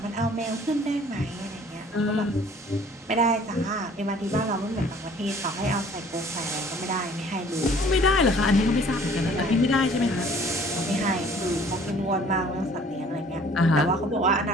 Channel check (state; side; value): normal; both; correlation 0.53